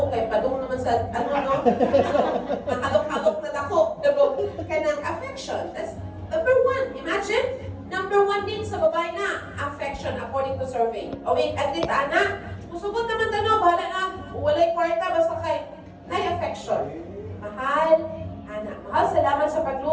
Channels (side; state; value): both; identical; correlation 1.00